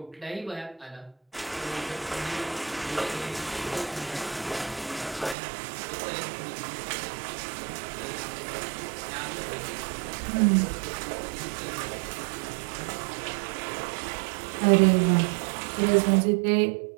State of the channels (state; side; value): drops out; left; at 5.4 s